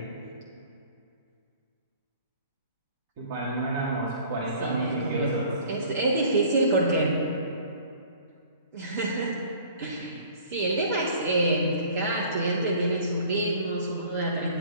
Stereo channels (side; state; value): both; inverted; correlation -0.50